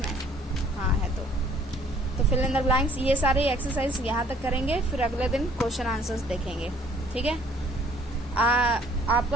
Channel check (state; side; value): normal; both; correlation 0.58